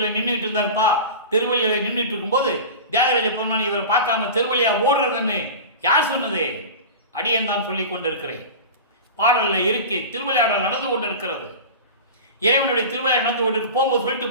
நின்றுட்டு இருந்தார்ப்பா. திருவள்ளியில் நின்றுட்டு இருக்கும்போது தியாகராஜ பெருமான் இவரை பார்க்காம தெருவழியா ஓடுறதுன்னு யார் சொன்னது? அடியன் தான் சொல்லிக் கொண்டிருக்கிறேன். பாடல்ல இருக்கு. திருவிளையாடல் நடந்து கொண்டு இருக்கிறது. இறைவனுடைய திருவிளையாடல் நடந்து கொண்டு போகும்போது சொல்லிட்டு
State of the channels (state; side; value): inverted; both; correlation -0.31